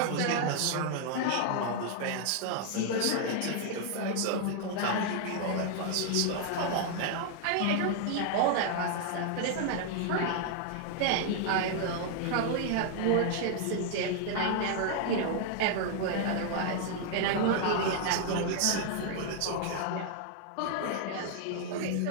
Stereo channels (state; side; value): different; both; correlation 0.00